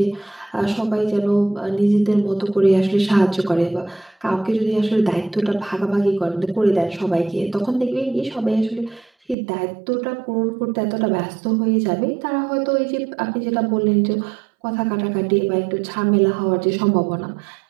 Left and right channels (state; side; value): drops out; left; at 9.3 s